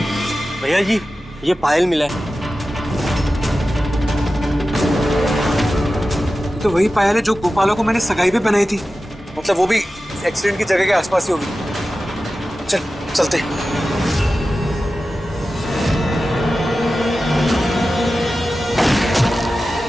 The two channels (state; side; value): normal; both; correlation 0.94